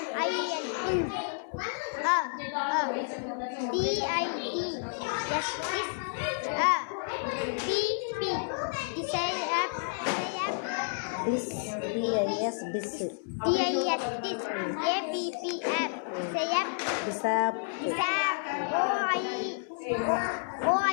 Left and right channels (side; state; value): right; silent; 57 dB below the other